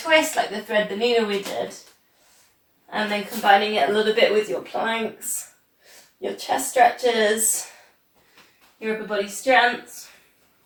like the thread the needle we did. And then combining it a little bit with your planks, your chest stretches, your upper body strength.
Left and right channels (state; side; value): identical; both; correlation 1.00